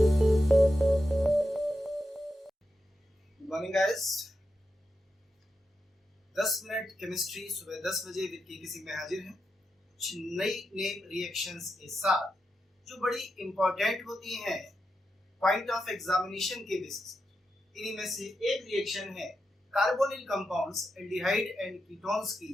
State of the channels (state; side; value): normal; both; correlation 0.87